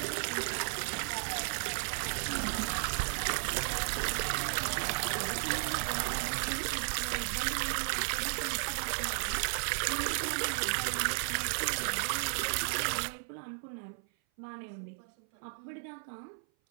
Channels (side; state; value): left; silent; 55 dB below the other